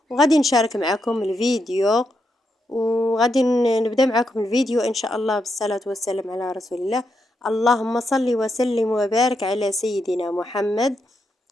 وغادي نشارك معكم الفيديو، وغادي نبدا معكم الفيديو ان شاء الله بالصلاة والسلام على رسول الله. اللهم صل وسلم وبارك على سيدنا محمد.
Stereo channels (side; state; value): both; normal; correlation 0.82